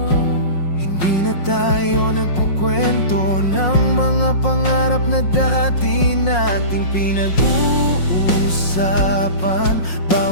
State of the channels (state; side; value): late; right; 5.5 ms